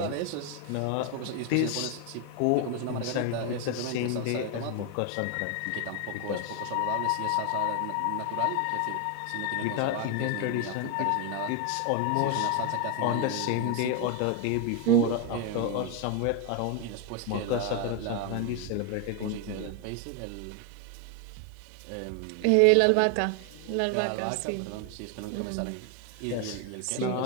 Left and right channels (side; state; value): both; different; correlation 0.01